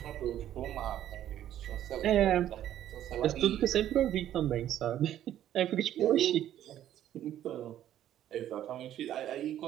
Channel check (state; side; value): quieter; left; 11.7 dB